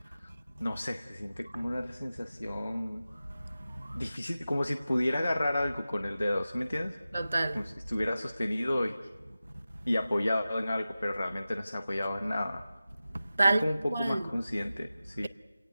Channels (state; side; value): inverted; both; correlation -0.95